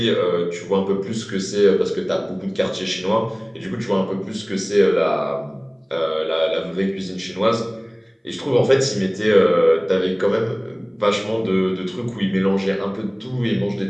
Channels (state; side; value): identical; both; correlation 1.00